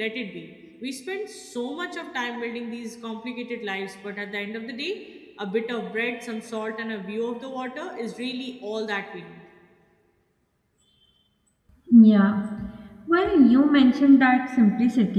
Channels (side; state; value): both; identical; correlation 1.00